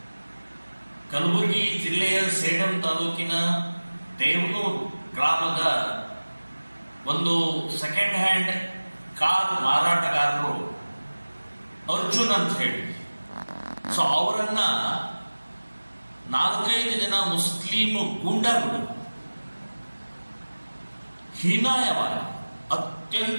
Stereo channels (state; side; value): inverted; both; correlation -1.00